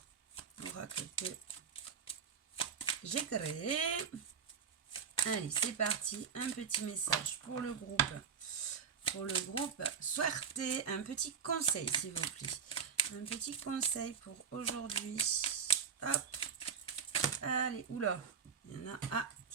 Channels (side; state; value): left; quieter; 6.7 dB